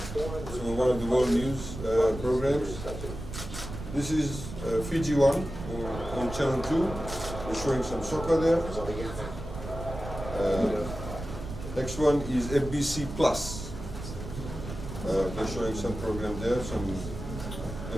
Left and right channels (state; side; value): noise; right; rumble, 9 dB below the sound